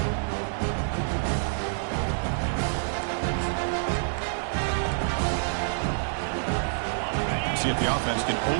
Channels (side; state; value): left; silent; digital silence